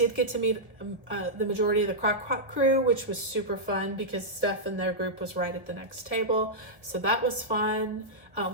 get to meet the majority of the Crock Pot crew, which was super fun because Steph and their group was right at the next table. So that was fun.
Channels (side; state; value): left; late; 1.2 ms